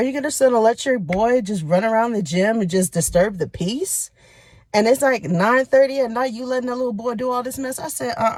you just gonna let your boy just run around the gym and just disturb the peace? And it's like 9:30 at night, you letting that little boy do all this mess? I said,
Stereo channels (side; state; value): both; identical; correlation 1.00